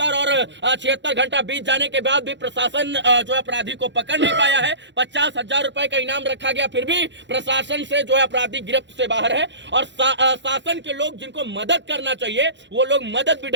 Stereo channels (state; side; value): late; left; 0.52 ms